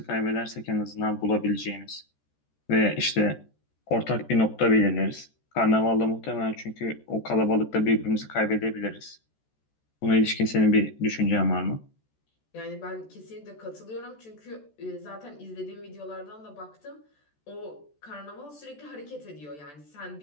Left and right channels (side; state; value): right; late; 14 ms